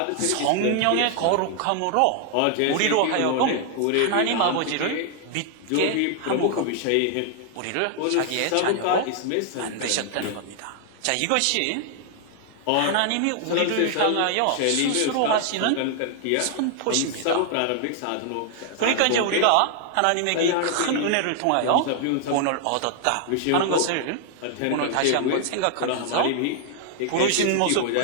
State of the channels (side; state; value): both; different; correlation 0.00